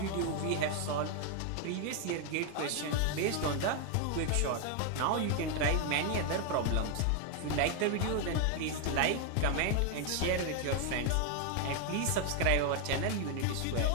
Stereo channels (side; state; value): both; different; correlation 0.01